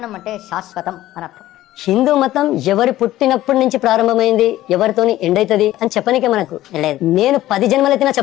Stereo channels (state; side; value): quieter; right; 14.9 dB